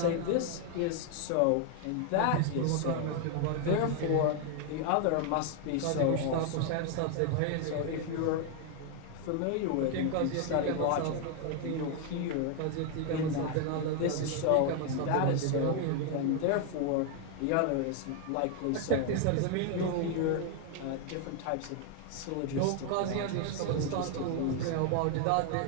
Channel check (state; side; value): different; both; correlation 0.00